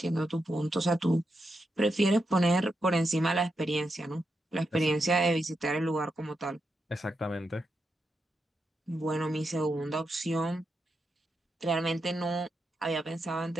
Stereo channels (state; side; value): normal; both; correlation 0.85